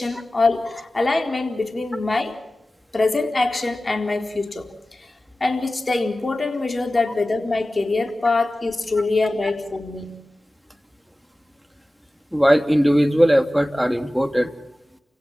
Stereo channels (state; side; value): normal; both; correlation 0.96